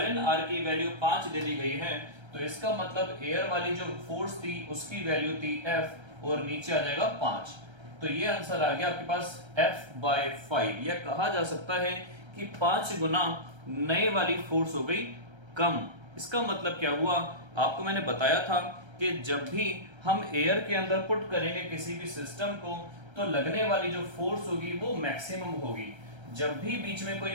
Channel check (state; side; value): late; left; 1.3 ms